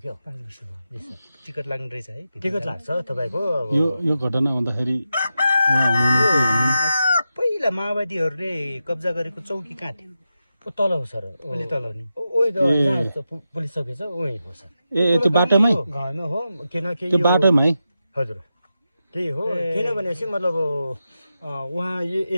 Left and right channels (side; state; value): both; inverted; correlation -0.89